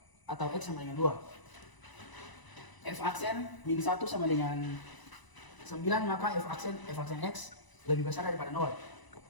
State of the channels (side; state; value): right; late; 1.0 ms